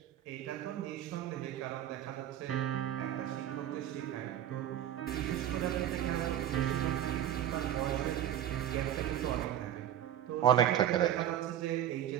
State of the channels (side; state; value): left; quieter; 11.1 dB